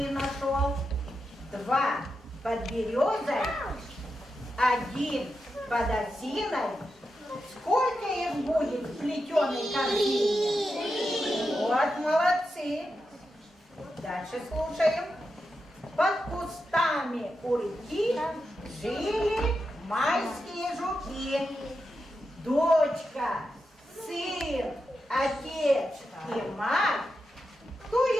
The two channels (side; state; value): both; normal; correlation 0.88